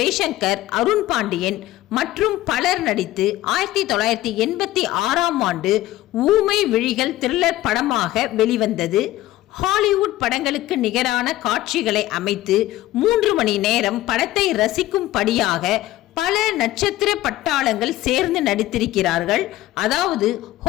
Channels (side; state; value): right; quieter; 15.7 dB